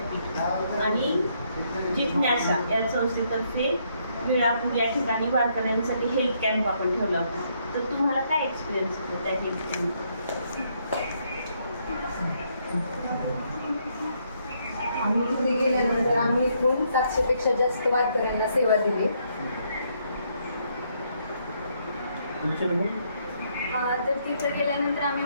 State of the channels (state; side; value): inverted; both; correlation -0.73